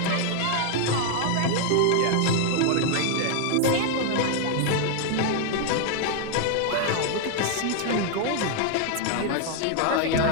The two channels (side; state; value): both; different; correlation 0.00